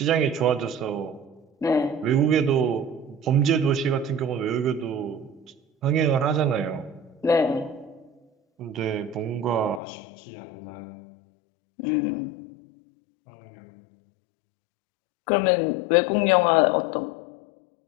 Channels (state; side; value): drops out; right; at 9.8 s